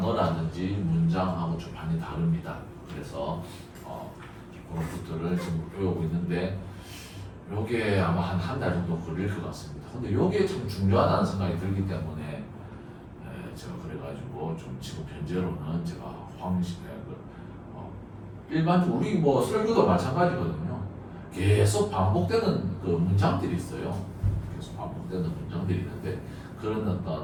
문장하고 좀 많이 다릅니다. 그래서 그런 것들을 지금 배우고 있는데 요게 아마 한 달 정도 걸릴 것 같습니다. 근데 요게 참 중요하다는 생각이 들기 때문에 제가 그래가지고 좀 지금 현재로는 제가 일반적으로 우리 뭐 설교도 마찬가지거든요. 계속 반복되는 그 문장들이 있어요. 계속 반복되는 문장들이 있는데 그런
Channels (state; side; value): identical; both; correlation 1.00